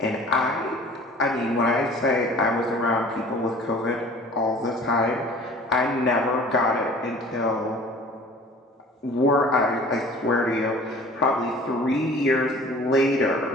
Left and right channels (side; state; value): both; normal; correlation 0.46